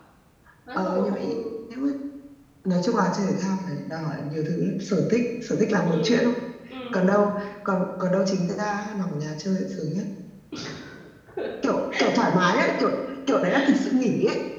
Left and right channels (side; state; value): both; identical; correlation 1.00